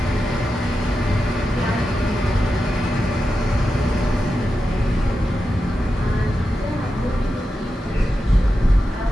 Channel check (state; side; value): normal; both; correlation 0.90